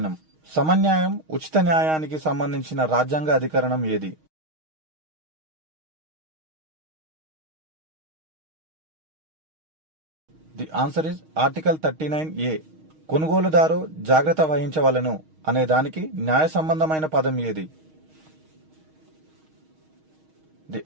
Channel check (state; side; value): late; left; 6.4 ms